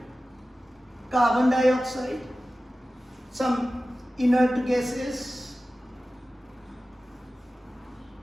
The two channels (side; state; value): both; normal; correlation 0.95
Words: carbon dioxide, some inert gases,